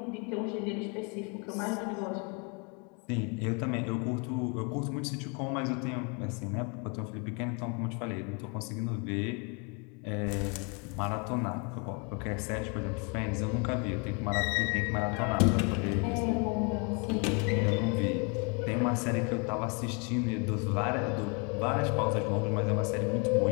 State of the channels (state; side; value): quieter; right; 34.0 dB